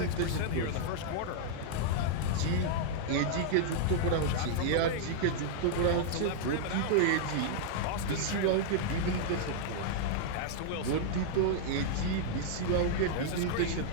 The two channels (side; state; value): both; different; correlation -0.01